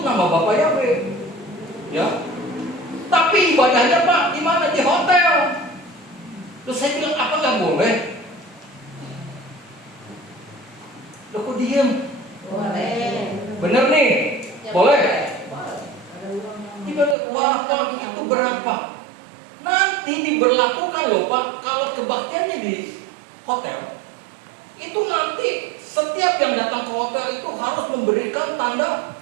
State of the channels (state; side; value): drops out; left; at 17.2 s